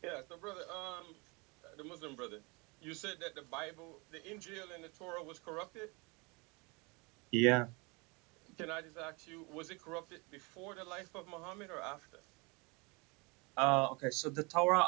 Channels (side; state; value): left; quieter; 28.4 dB